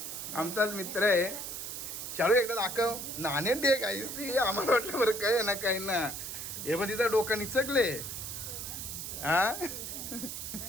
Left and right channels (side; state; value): right; noise; hiss, 6 dB below the sound